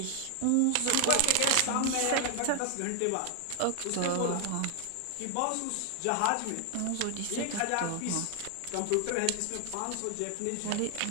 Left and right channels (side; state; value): both; different; correlation 0.00